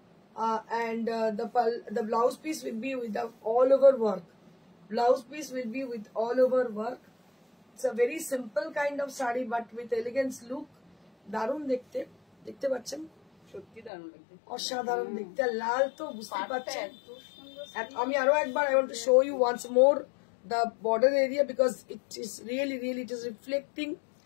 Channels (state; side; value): drops out; right; at 13.9 s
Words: and the blouse piece will be with the all over work. Blouse piece will be with all over work. It's a very simple kind of saree but with elegance look. দারুণ দেখতে, দেখতে পাচ্ছেন, সত্যি দারুণ লাগছে, অসাধারণ দেখতে। লাল তো বুঝতে পারছেন। আমি আরো একবার I want to show you once more the border area because it is really it is reflecting,